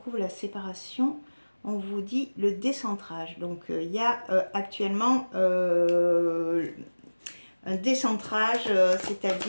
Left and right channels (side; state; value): both; inverted; correlation -1.00